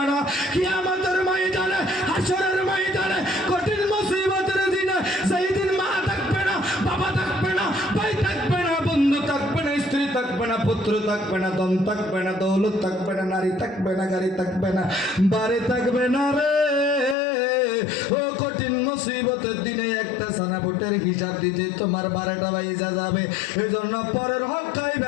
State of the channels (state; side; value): drops out; right; at 17.2 s